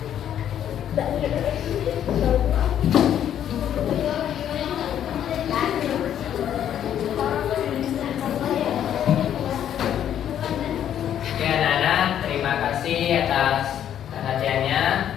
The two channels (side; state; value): right; quieter; 10.2 dB